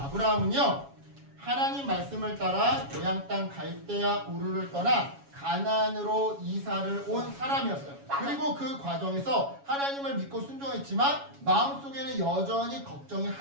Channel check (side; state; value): left; late; 7.2 ms